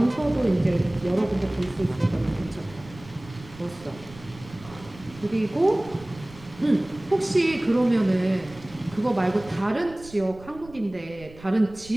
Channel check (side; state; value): right; noise; rumble, 20 dB below the sound